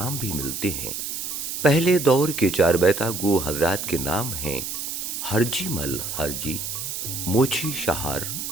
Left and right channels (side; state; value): right; noise; hiss, 5 dB below the sound